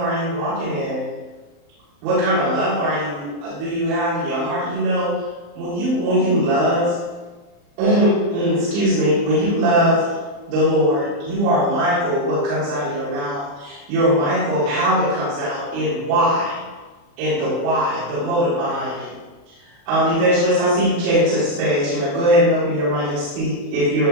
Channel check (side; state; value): left; late; 35 ms